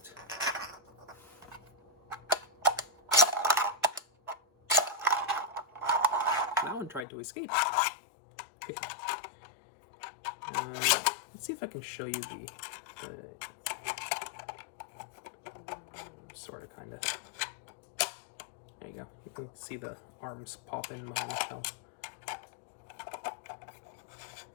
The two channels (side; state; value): right; drops out; at 7.1 s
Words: That one tried to escape. Let's see if I can show you the sort of kind of. There you go. You can see the arms pop in behind the shell.